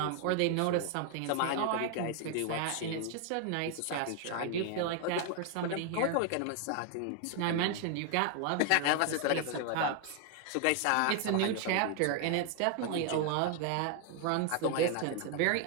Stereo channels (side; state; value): both; different; correlation 0.00